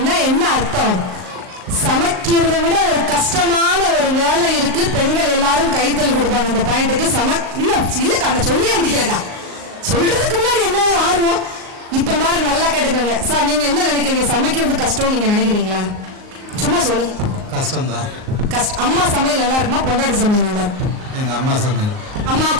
என்ன அர்த்தம்? சமைக்கிறத விட ஒரு கஷ்டமான ஒரு வேலை இருக்கு. பெண்கள் எல்லாரும் கைத்தல் கொடுப்பாங்க இந்த பாயிண்ட்டுக்கு. இல்லக்கா நான் சொல்லியே முடியலக்கா, சொல்றதுக்கு முன்னாடி என்ன ஒரு ஆர்வம். இப்ப பாருங்க, நல்லா கேட்டுக்கோங்க சார். நீங்க என்ன நினைக்கிறீங்க? சமைக்கிறது கஷ்டம் நீங்க நினைக்கிறீங்களா? சும்மா சொல்லுங்க. கஷ்டம்தான். கஷ்டம். அம்மா சமையல் நல்லா இருக்குமா, பொண்டாட்டி சமையல் நல்லா இருக்கும்? எங்க அம்மா சமையல்.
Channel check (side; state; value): left; late; 38 ms